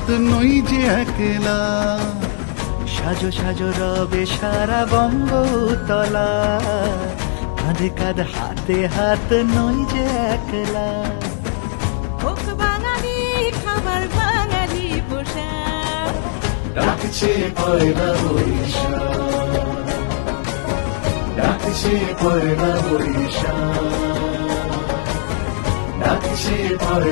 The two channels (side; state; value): right; silent; digital silence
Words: নই যে একলা। সাজো সাজো রবে সারা বঙ্গতলা, কাঁধে কাঁধ হাতে হাত নই যে একলা। হোক বাঙালি খাবার বাঙালি পোশাক, ডাকছে পয়লা বৈশাখ, ডাকছে পয়লা বৈশাখ, ডাকছে